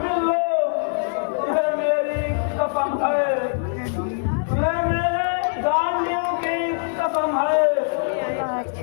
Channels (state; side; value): silent; right; digital silence